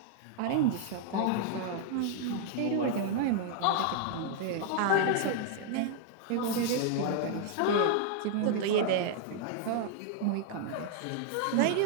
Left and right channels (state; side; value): different; both; correlation 0.00